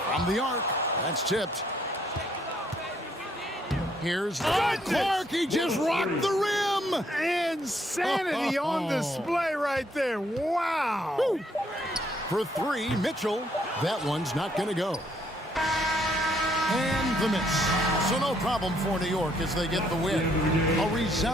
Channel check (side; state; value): both; normal; correlation 0.69